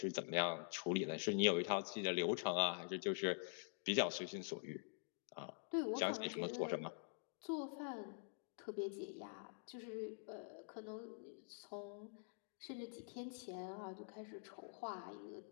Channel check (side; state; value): right; silent; digital silence